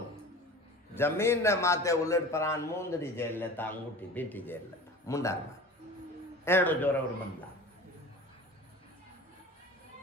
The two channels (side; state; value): both; normal; correlation 0.38